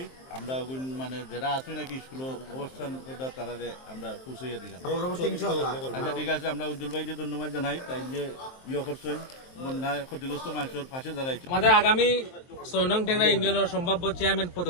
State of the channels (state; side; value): late; right; 23 ms